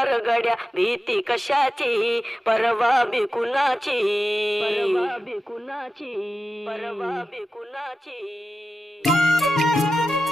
रगड्या भीती कशाची, परवा बी कुणाची, परवा बी कुणाची, परवा बी कुणाची.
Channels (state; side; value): normal; both; correlation 0.93